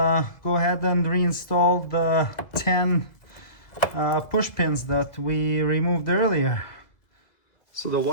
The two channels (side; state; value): right; late; 1.8 ms